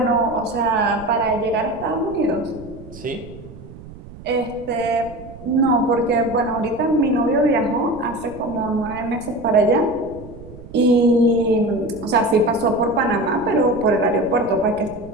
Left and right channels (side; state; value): right; noise; rumble, 17 dB below the sound